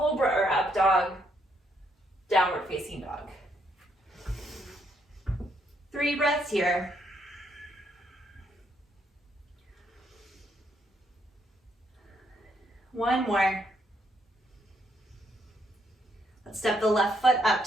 or up dog, downward facing dog. 3 breaths here. One more. Let's step the left foot up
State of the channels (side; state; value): both; normal; correlation 0.74